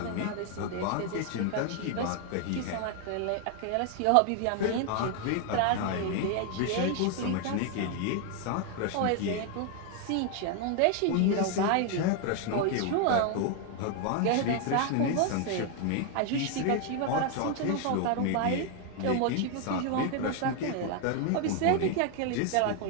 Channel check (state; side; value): different; both; correlation 0.01